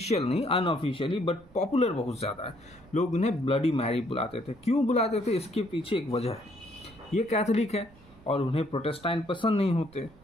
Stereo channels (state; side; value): noise; right; rumble, 25 dB below the sound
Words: नहीं, अनऑफिशियली, बट पॉपुलर बहुत ज़्यादा है। लोग उन्हें ब्लडी मैरी बुलाते थे। क्यों बुलाते थे? इसके पीछे एक वजह है। ये कैथोलिक है और उन्हें प्रोटेस्टेंट पसंद नहीं होते,